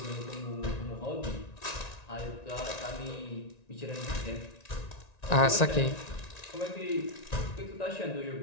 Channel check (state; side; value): late; right; 1.9 ms